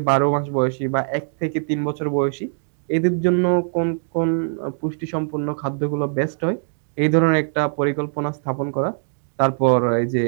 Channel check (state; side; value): silent; left; digital silence